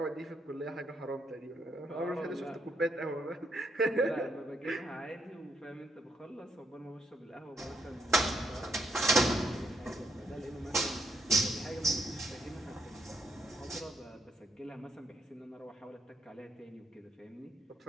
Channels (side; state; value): both; normal; correlation 0.75